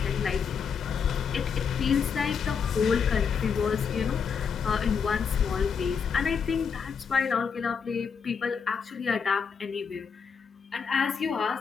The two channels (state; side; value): quieter; right; 6.3 dB